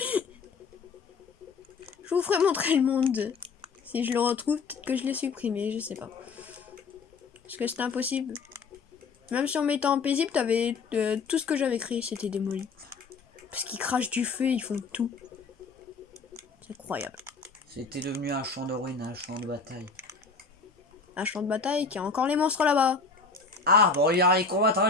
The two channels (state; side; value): quieter; right; 4.7 dB